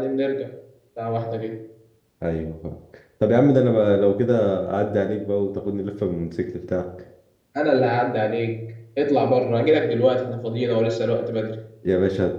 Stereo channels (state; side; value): identical; both; correlation 1.00